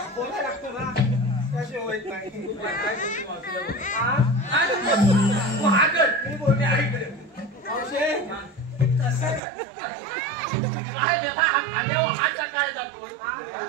बोलायला लागतो ना कसे होत नाही मी बोलते ऐकले काय जातो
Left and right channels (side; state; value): left; drops out; at 9.4 s